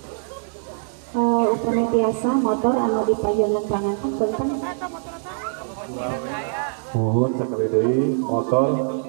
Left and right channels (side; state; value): left; silent; digital silence